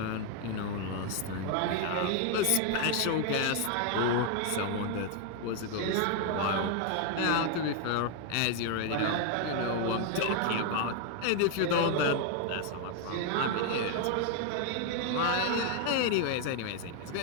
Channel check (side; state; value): both; different; correlation 0.00